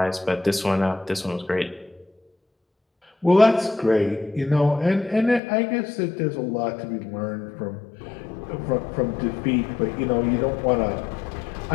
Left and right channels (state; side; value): drops out; right; at 5.4 s